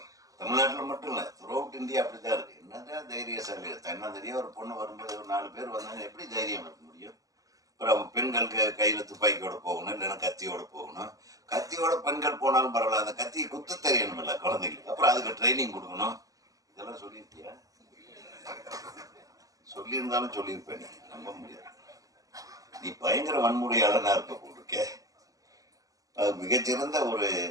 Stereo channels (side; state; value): left; late; 0.17 ms